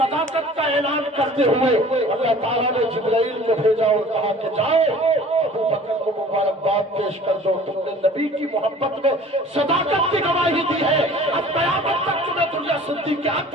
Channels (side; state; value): both; normal; correlation 0.47